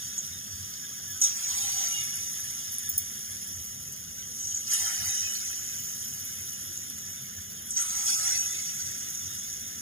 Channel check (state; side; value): late; left; 0.60 ms